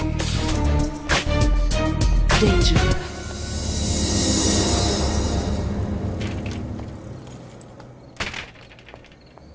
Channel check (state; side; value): identical; both; correlation 1.00